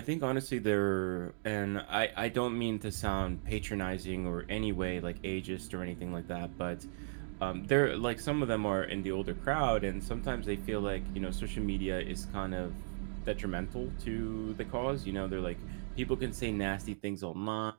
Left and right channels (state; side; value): silent; left; digital silence